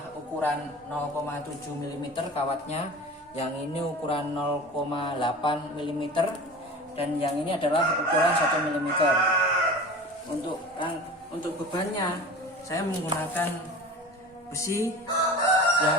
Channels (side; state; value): both; normal; correlation 0.36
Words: ukuran 0,7 mm kawatnya, yang ini ukuran 0,8 mm, dan yang ini adalah ukuran 1 mm. Untuk bebannya saya menggunakan besi